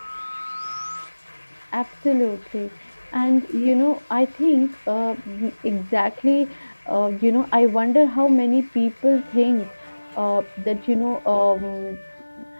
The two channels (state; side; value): inverted; both; correlation -1.00